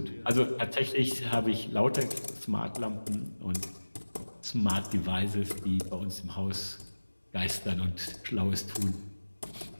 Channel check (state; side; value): inverted; both; correlation -1.00